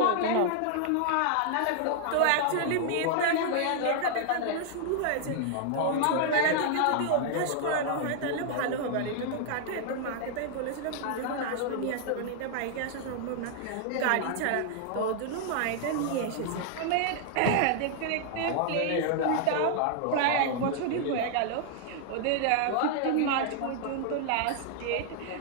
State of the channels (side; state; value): both; different; correlation 0.00